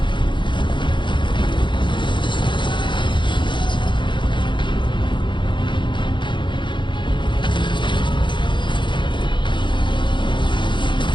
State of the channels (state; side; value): late; right; 0.23 ms